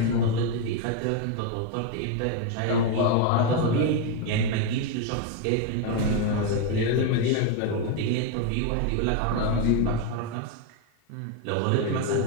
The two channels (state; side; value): different; both; correlation 0.02